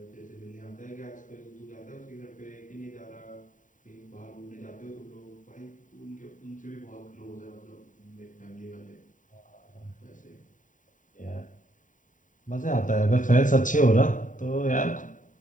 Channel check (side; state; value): right; late; 0.38 ms